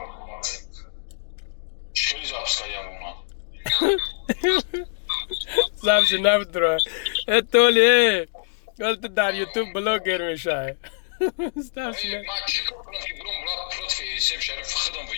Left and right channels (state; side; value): silent; right; digital silence